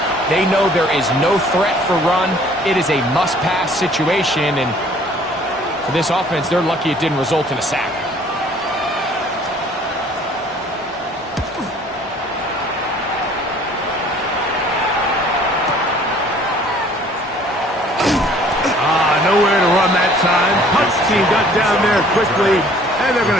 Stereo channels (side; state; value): both; normal; correlation 0.55